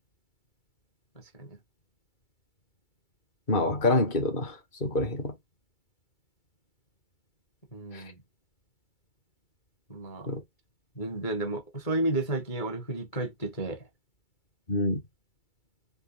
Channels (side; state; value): right; late; 2.3 ms